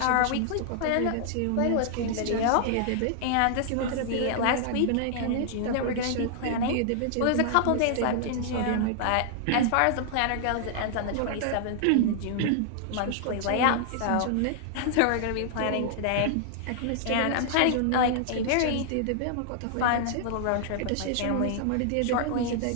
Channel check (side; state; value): both; different; correlation -0.01